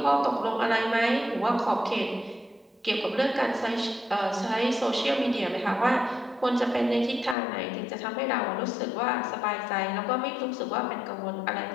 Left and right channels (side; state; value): right; drops out; at 7.4 s